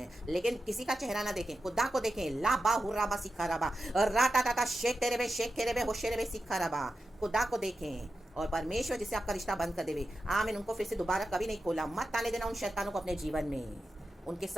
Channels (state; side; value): normal; both; correlation 0.91